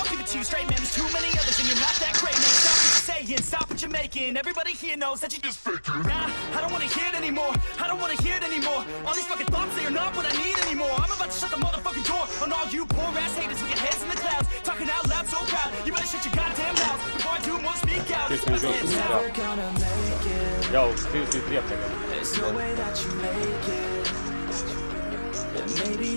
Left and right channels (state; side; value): inverted; both; correlation -1.00